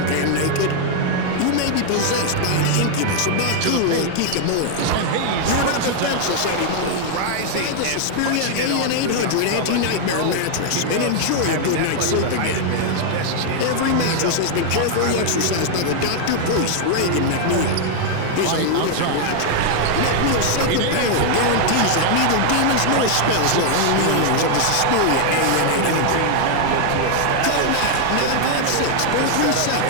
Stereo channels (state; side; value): different; both; correlation 0.00